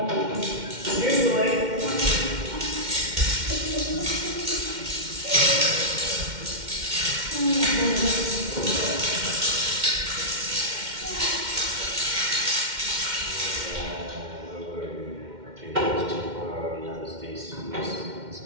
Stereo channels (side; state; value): left; late; 2.1 ms